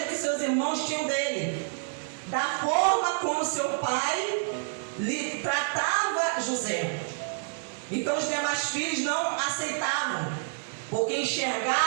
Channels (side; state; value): left; silent; digital silence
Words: que seus irmãos tinham dele, da forma como seu pai lhe tratava José. Então os demais filhos não aceitavam, porque